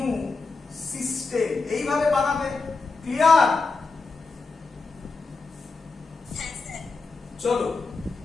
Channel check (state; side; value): quieter; right; 4.0 dB